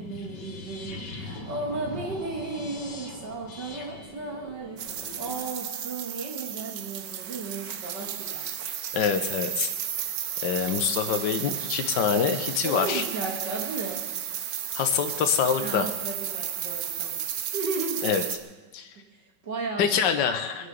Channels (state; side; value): late; right; 5.3 ms